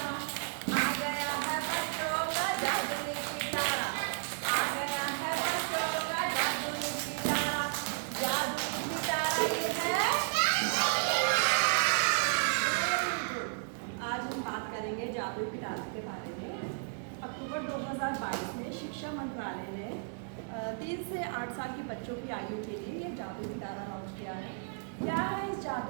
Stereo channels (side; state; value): left; silent; 56 dB below the other